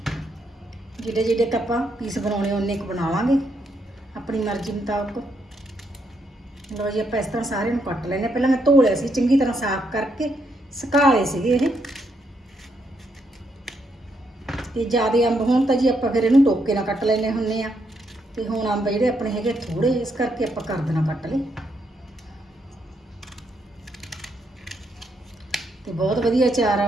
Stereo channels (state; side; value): normal; both; correlation 0.77